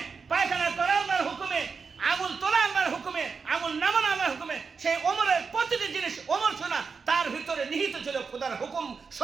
পায়খানা করা আল্লাহর হুকুমে, আঙুল তোলা আল্লাহর হুকুমে, আঙুল নামানো আল্লাহর হুকুমে। সেই ওমরের প্রতিটি জিনিস ওমর শোনা, তার ভিতরে নিহিত ছিল খোদার হুকুম,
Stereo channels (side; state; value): left; quieter; 5.3 dB